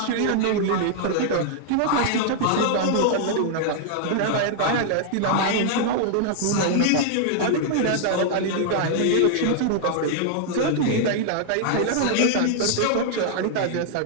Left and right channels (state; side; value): different; both; correlation -0.01